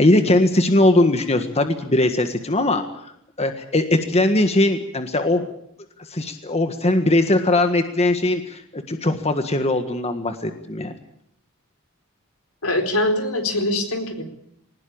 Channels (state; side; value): normal; both; correlation 0.52